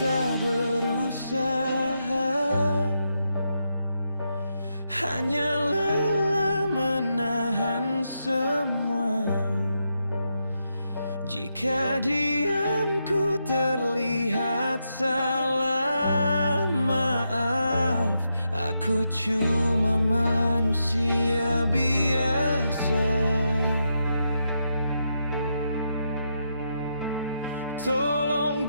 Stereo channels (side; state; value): both; inverted; correlation -0.83